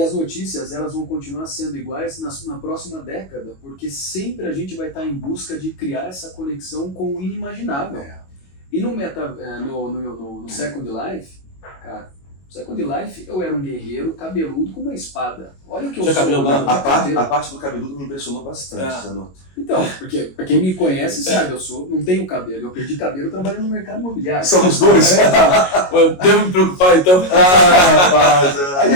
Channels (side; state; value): right; late; 22 ms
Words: as notícias elas vão continuar sendo iguais na próxima década, porque sempre a gente vai estar em busca de criar essa conexão com o inimaginável. E no Second Life, cara, Second Life, eu era um guerreiro cabeludo com uma espada. Olha o que eu sou. Cabelo, a parte do cabeludo me impressionou bastante, Zanotto. Então, porque pra quem me conhece sabe, não tenho cabelo. Eu perdi cabelo trabalhando no mercado imobiliário. Somos dois. Eu devo me preocupar, então. Rapaz.